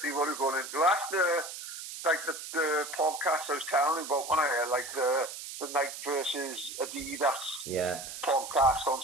what it's going into. That's the podcast I was telling you about when I had like the Nike versus Adidas podcast on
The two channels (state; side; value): noise; right; hiss, 9 dB below the sound